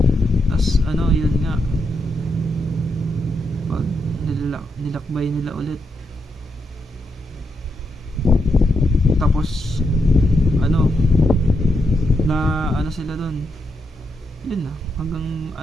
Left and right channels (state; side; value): normal; both; correlation 0.82